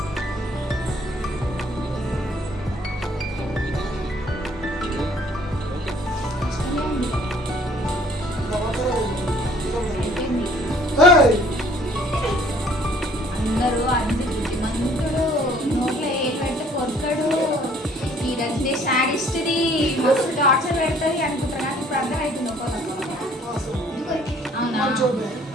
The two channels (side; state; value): both; normal; correlation 0.57